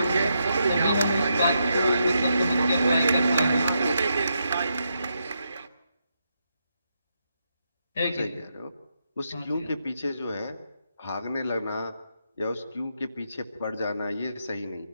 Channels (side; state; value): both; inverted; correlation -0.82